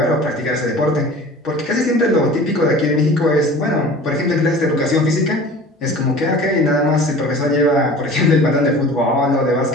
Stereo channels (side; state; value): both; normal; correlation 0.42